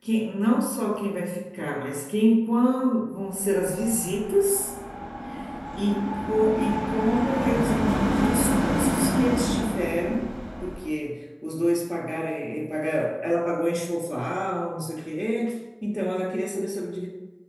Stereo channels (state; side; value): identical; both; correlation 1.00